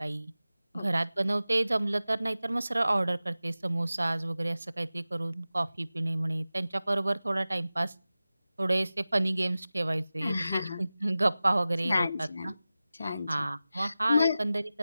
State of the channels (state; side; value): inverted; both; correlation -0.95